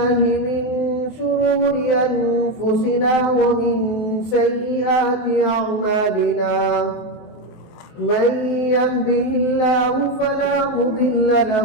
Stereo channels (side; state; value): right; late; 23 ms